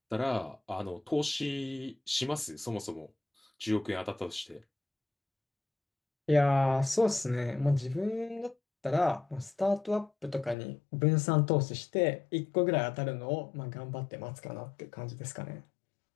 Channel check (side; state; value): right; drops out; at 10.6 s